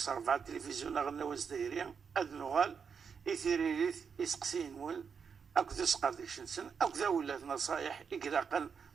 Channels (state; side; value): quieter; left; 6.3 dB